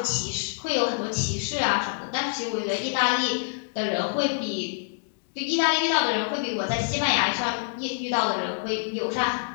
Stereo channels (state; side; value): silent; right; digital silence